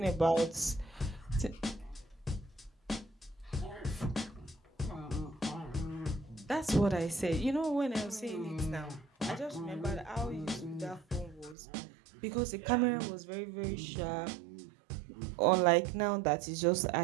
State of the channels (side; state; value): left; drops out; at 11.6 s